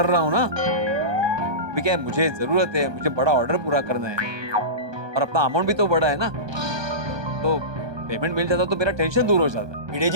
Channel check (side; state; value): left; late; 1.2 ms